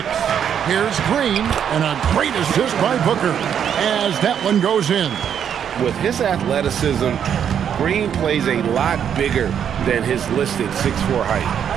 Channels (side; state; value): left; quieter; 8.6 dB